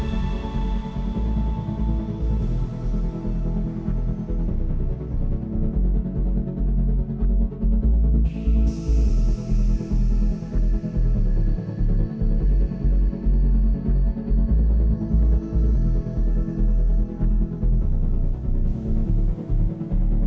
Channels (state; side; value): identical; both; correlation 1.00